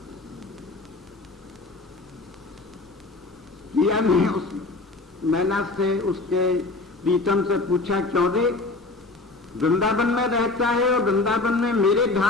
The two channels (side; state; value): right; quieter; 3.4 dB